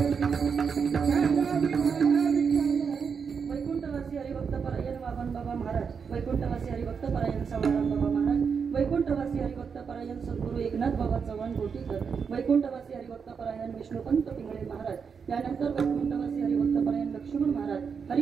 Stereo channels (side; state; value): left; quieter; 6.1 dB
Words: वैकुंठवासी हरिभक्त परायण वामन बाबा महाराज वैकुंठवासी हरिभक्त परायण सवाराम बाबा महाराज वैकुंठवासी हरिभक्त परायण सद्गुरू एकनाथ बाबा चव्हाण गोटीकर वैकुंठवासी हरिभक्त परायण विष्णुपंत पिंगळे महाराज त्यानंतर वैकुंठवासी हरिभक्त परायण लक्ष्मण महाराज